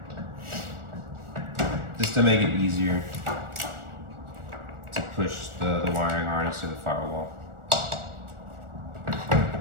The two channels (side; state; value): left; late; 1.4 ms